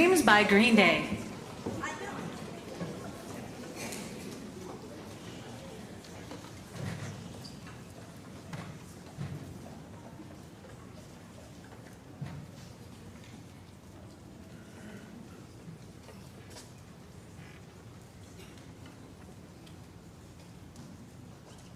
by Green Day.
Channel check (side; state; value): both; identical; correlation 1.00